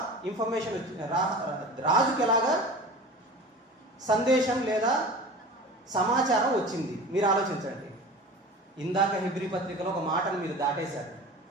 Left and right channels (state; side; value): normal; both; correlation 0.37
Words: ఇన్ఫర్మేషన్ వచ్చింది? రాజుకు ఎలాగా సందేశం లేదా సమాచారం వచ్చింది? మీరు ఆలోచించండి. ఇందాక హెబ్రీ పత్రికలో ఒక మాటను మీరు దాటేశారు.